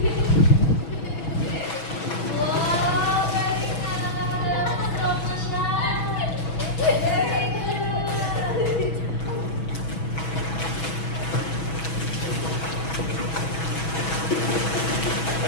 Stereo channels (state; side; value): late; right; 6.2 ms